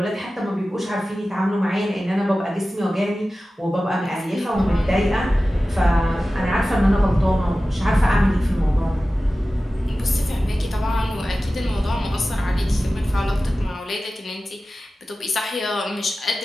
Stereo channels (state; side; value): normal; both; correlation 0.95